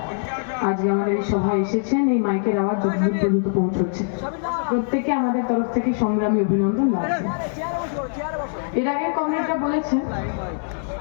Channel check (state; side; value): silent; right; digital silence